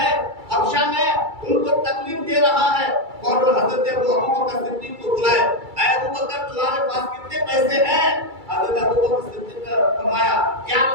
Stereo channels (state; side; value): late; left; 2.3 ms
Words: حبشہ میں ان کو تکلیف دے رہا ہے، اور حضرت ابو بکر صدیق کو بلائے، اے ابو بکر تمہارے پاس کتنے پیسے ہیں؟ حضرت ابو بکر صدیق نے فرمایا یا